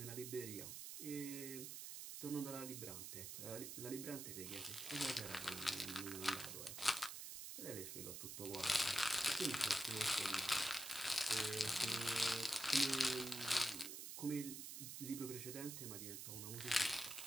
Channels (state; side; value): noise; right; hiss, 7 dB below the sound